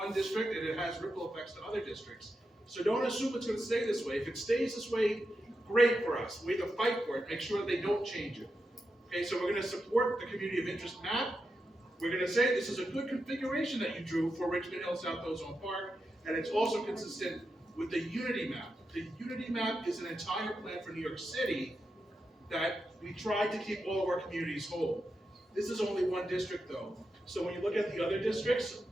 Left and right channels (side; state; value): both; normal; correlation 0.87